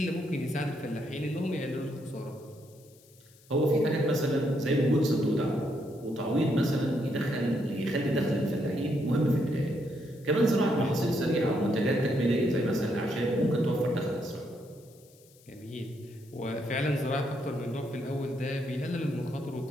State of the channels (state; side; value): noise; left; hiss, 27 dB below the sound